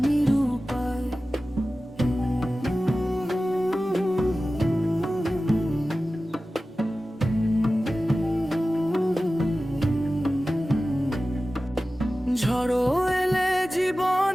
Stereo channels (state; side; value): normal; both; correlation 0.95